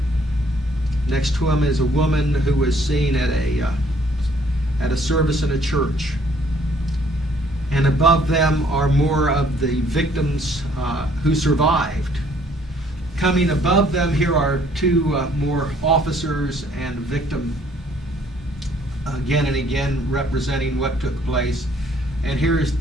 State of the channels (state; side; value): normal; both; correlation 0.62